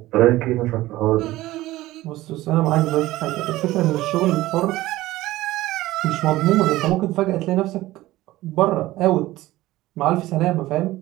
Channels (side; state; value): left; quieter; 17.1 dB